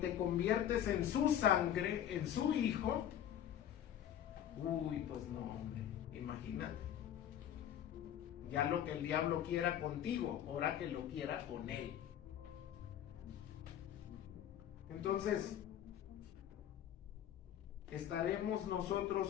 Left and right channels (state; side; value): quieter; right; 10.5 dB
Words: conviertes en su sangre, en su hijo, pues no, hombre, imagínate. Ya lo que el diablo quiera contigo, ahora que lo quiera con él. Entonces, ¿estaremos